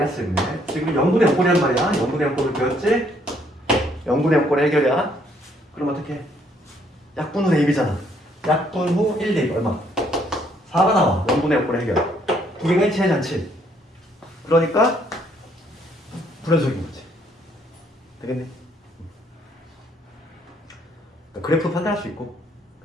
지금 0분의 0꼴이란 말이야. 0분의 0꼴을 배웠지? 0분의 0꼴의 해결이야. 그럼 어떻게? 약분 후 a b잖아. 약분 후 1 대입 얼마? 4가 나와. 0분의 0꼴의 해결. 두 개가 일치하지 않지. 그러니까 불연속인 거지. 되겠네. 그러니까 그래프 판단할 수 있고.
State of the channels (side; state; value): both; normal; correlation 0.67